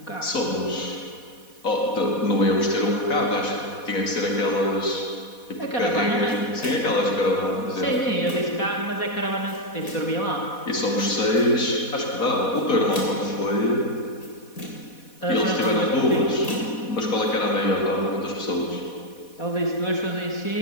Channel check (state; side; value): late; right; 4.1 ms